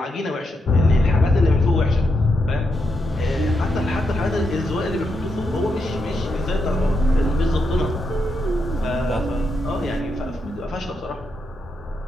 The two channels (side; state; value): both; normal; correlation 0.83